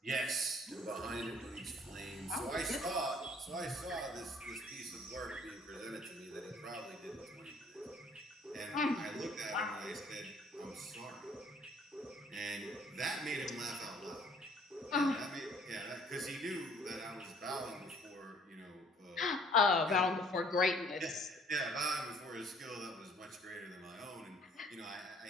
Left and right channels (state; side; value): normal; both; correlation 0.59